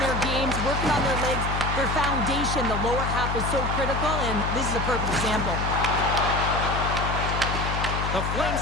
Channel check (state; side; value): noise; left; hum, 2 dB below the sound